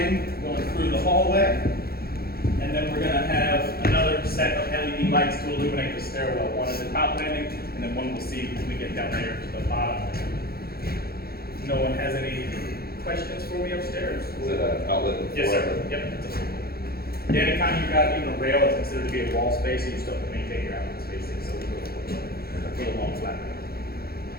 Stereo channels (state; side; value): late; right; 0.45 ms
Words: going through the hallway. And then we're going to have another set of LED lights to illuminate the stairwell. One at the top landing, and then one we'll see when we get down there to the bottom. No one has any questions for me upstairs? Is it an outlet? Yes, sir. Yep. Yeah, anytime you've got even a rail, it's considered to be a wall space, and you still have to maintain your outlet spacing, so we'll go for the long flat.